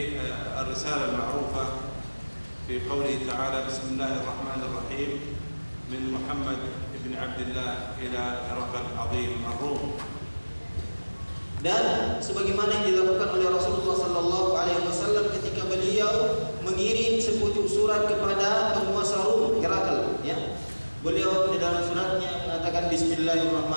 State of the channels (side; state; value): both; inverted; correlation -1.00